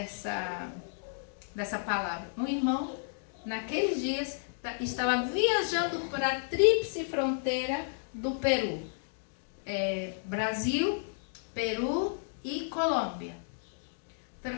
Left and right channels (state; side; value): silent; right; digital silence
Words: palavra. Um irmão, naqueles dias, estava viajando para a tríplice fronteira do Peru. Brasil, Peru e Colômbia.